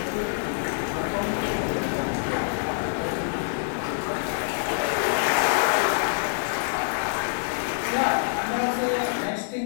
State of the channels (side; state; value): right; silent; digital silence